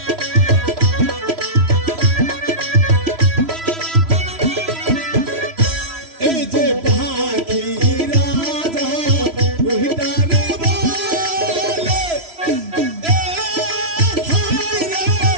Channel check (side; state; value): left; late; 3.0 ms